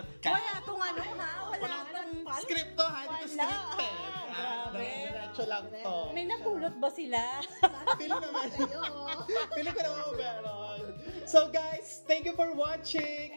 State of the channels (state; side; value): inverted; both; correlation -1.00